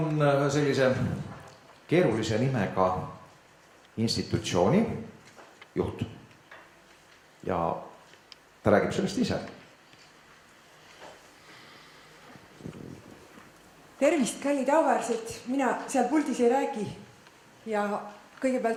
sellise keerulise nimega institutsiooni juht ja ta räägib sellest ise. Tervist, kallid auväärsed, mina seal puldis ei räägi ja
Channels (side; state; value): both; identical; correlation 1.00